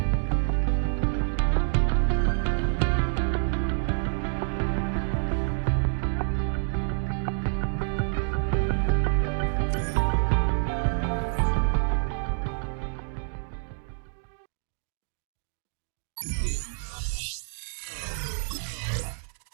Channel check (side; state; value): left; silent; digital silence